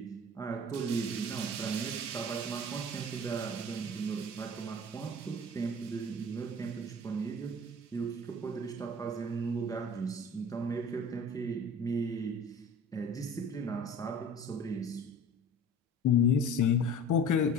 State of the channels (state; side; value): normal; both; correlation 0.41